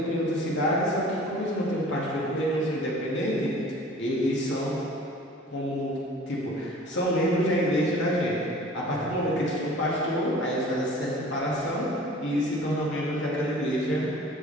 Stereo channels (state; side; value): normal; both; correlation 0.46